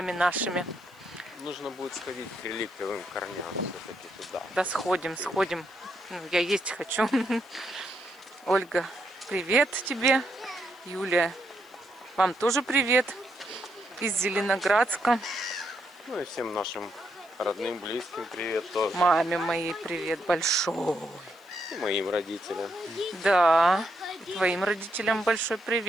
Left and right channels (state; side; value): noise; left; hiss, 29 dB below the sound